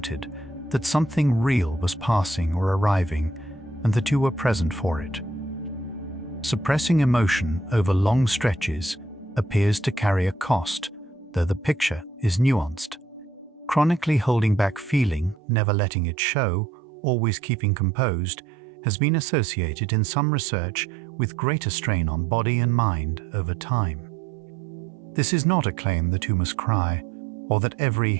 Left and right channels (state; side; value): drops out; left; at 15.4 s